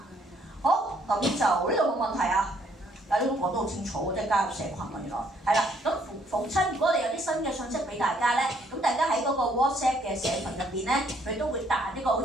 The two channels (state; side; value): normal; both; correlation 0.67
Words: 好，咁就呢度冇問題啊。呢都講得好清楚，即係加入社群喎，原來係啦。咁逢親，如果我哋有啲新嘅信息俾大家咧，咁大家喺嗰個 WhatsApp 嘅社群入邊咧，佢都會彈一個好